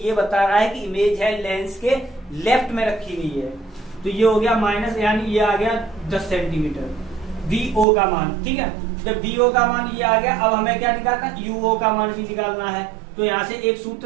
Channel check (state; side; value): drops out; left; at 7.9 s